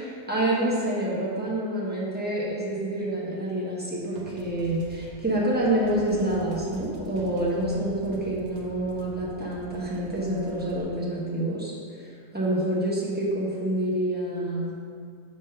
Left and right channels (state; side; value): normal; both; correlation 0.07